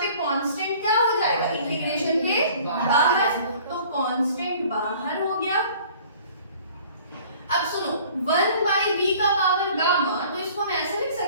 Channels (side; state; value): both; inverted; correlation -0.51